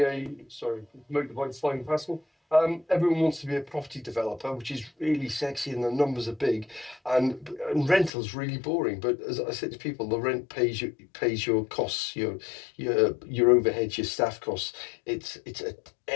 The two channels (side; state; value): right; drops out; at 8.1 s